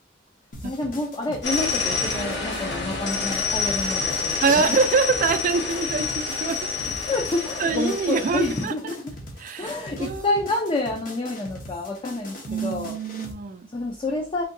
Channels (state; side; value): normal; both; correlation 0.20